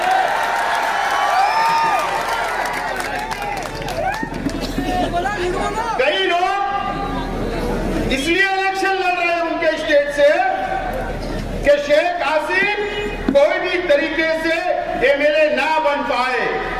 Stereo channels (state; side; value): identical; both; correlation 1.00